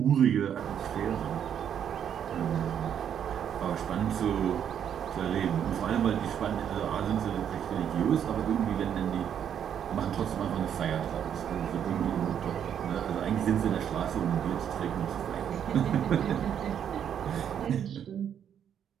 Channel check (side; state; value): left; quieter; 8.9 dB